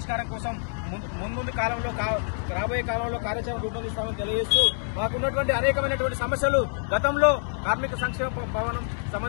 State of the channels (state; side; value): silent; right; digital silence